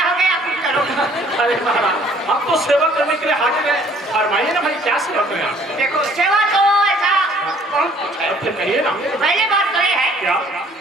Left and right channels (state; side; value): normal; both; correlation 0.58